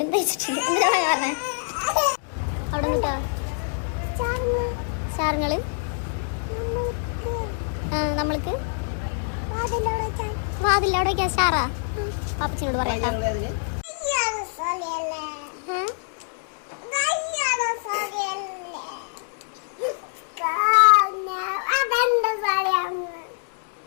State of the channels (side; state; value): right; silent; digital silence